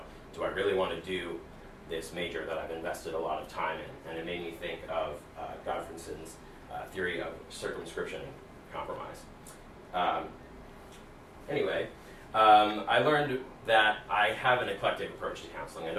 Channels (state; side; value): identical; both; correlation 1.00